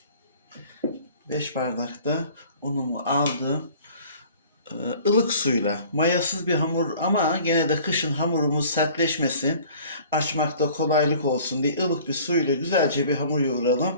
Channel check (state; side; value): inverted; both; correlation -0.49